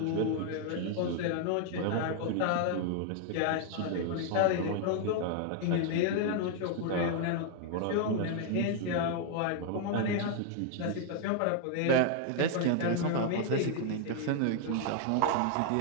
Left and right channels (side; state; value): both; different; correlation 0.00